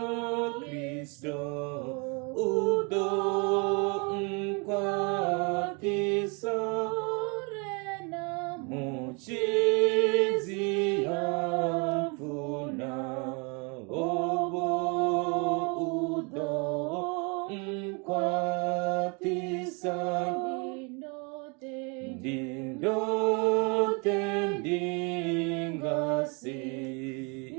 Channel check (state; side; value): quieter; left; 32.7 dB